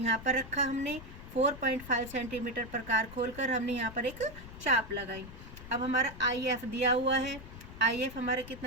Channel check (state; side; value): noise; left; rumble, 15 dB below the sound